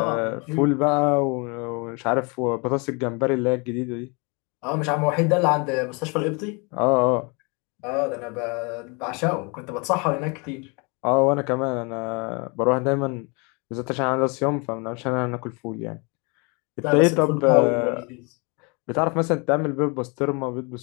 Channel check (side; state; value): right; quieter; 31.3 dB